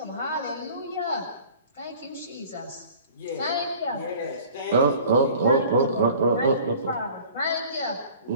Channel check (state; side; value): inverted; both; correlation -0.47